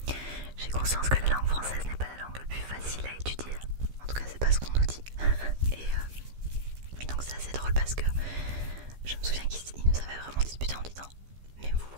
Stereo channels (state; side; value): late; left; 15 ms